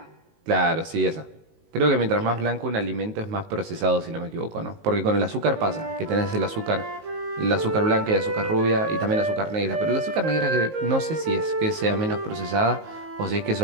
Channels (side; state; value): left; late; 19 ms